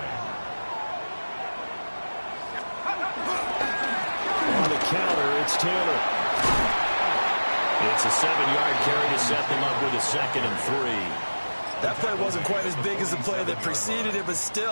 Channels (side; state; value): both; inverted; correlation -1.00